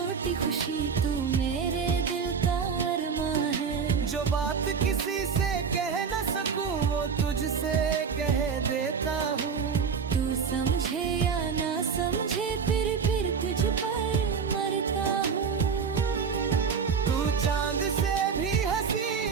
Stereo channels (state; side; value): quieter; left; 6.1 dB